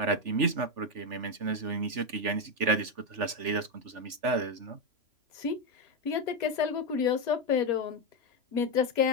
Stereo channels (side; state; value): left; late; 3.4 ms